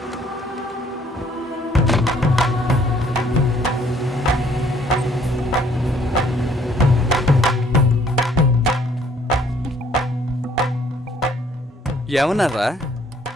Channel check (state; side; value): normal; both; correlation 0.62